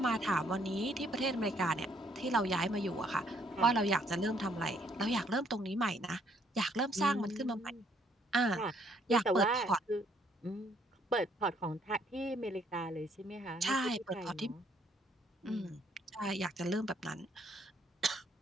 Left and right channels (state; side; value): normal; both; correlation 0.67